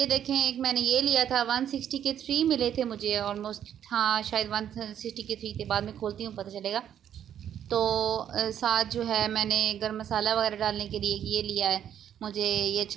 देखें, एक मैंने ये लिया था, 160 के 3 मिले थे मुझे ऑलमोस्ट। हाँ, शायद 160 के 3 थे, बाद में खोलती हूँ पता चलेगा। तो साथ जो है मैंने गरम मसाला वगैरह डालने के लिए ये लिया है, मुझे ये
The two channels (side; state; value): left; quieter; 9.8 dB